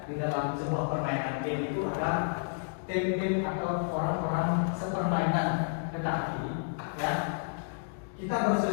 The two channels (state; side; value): silent; right; digital silence